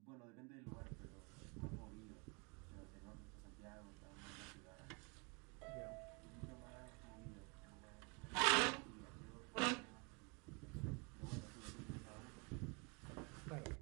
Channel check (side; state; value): left; quieter; 32.0 dB